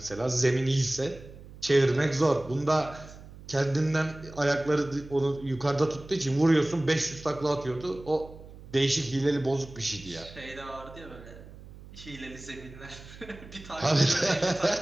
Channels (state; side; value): noise; right; hum, 17 dB below the sound